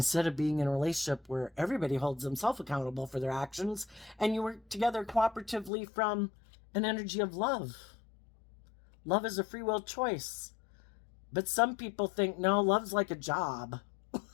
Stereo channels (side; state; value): right; drops out; at 5.7 s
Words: of being in a relationship where everybody holds themselves accountable for their actions and you work together cooperatively from an energy of love. Love is a free will choice. But some people think, no, love's like a job.